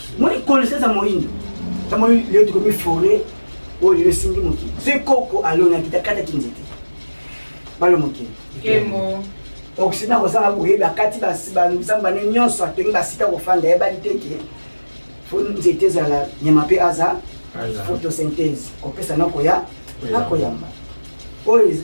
moni connaissance moyindo tamo le to mi forêt o le singi moki c'est koko alona kitakata kinzete balo moki Kemo. oksina kozanga boyeba kati basamba ne nyonso atengi basika kofanda ya baliteke fo nzete zala nyama pe aza photosynthèse kopesa nakoya nakoyamba oyo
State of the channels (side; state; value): both; inverted; correlation -1.00